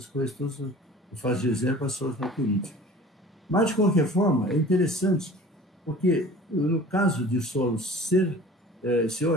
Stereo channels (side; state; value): both; normal; correlation 0.44